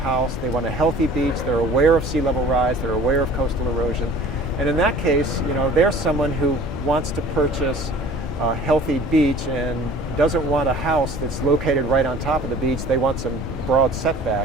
they want a healthy beach, they're aware of sea level rise, they're aware of coastal erosion, and in that case, they're someone who wants to purchase a healthy beach and doesn't want a house that's located right on top of the beach. They want some broad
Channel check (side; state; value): both; normal; correlation 0.47